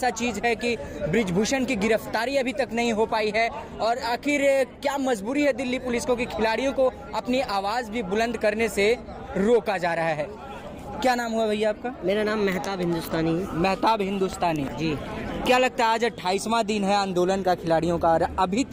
चीज़ है कि ब्रिजभूषण की गिरफ्तारी अभी तक नहीं हो पाई है और आखिर क्या मजबूरी है दिल्ली पुलिस को कि खिलाड़ियों को अपनी आवाज़ भी बुलंद करने से रोका जा रहा है। क्या नाम हुआ भैया आपका? मेरा नाम मेहताब हिंदुस्तानी है। मेहताब हिंदुस्तानी जी। क्या लगता है आज 28वां दिन है आंदोलन का खिलाड़ियों का और अभी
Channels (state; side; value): identical; both; correlation 1.00